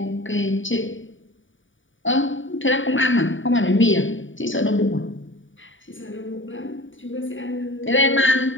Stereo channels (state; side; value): late; right; 0.56 ms